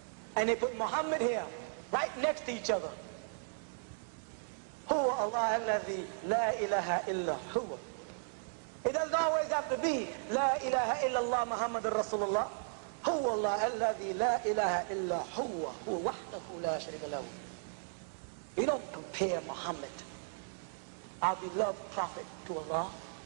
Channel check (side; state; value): left; silent; digital silence